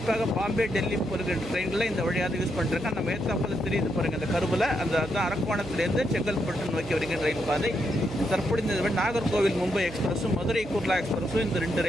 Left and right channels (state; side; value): noise; right; hum, 13 dB below the sound